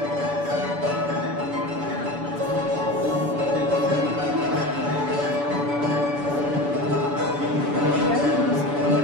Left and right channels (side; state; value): left; late; 7.0 ms